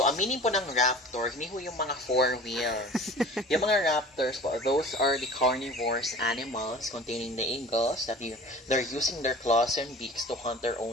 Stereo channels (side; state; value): both; normal; correlation 0.41